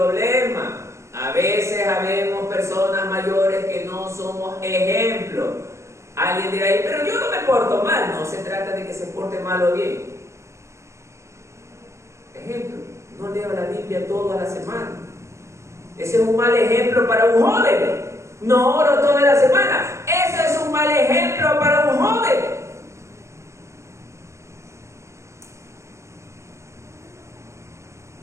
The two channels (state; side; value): late; left; 0.14 ms